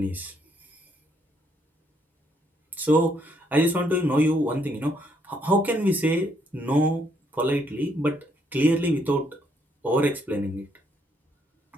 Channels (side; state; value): both; normal; correlation 0.72